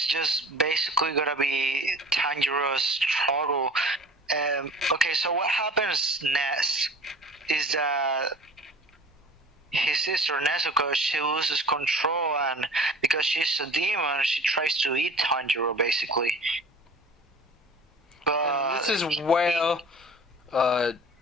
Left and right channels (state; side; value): normal; both; correlation 0.43